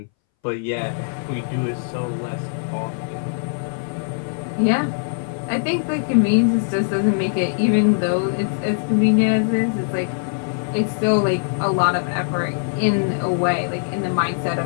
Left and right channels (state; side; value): silent; right; 62 dB below the other